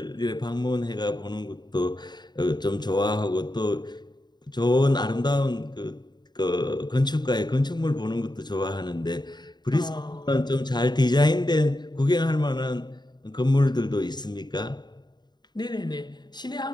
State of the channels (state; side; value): late; right; 0.21 ms